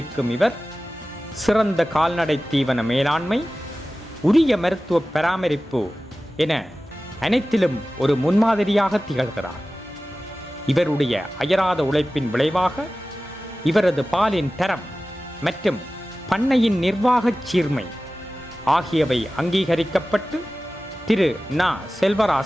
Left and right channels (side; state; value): both; normal; correlation 0.96